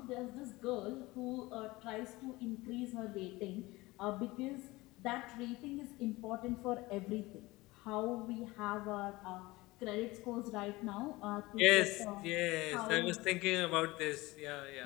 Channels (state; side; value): quieter; right; 20.8 dB